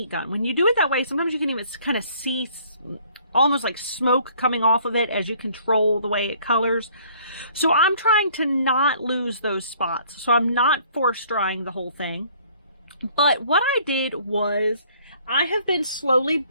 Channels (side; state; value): both; inverted; correlation -0.59